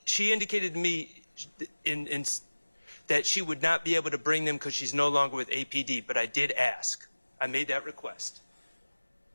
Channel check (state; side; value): inverted; both; correlation -1.00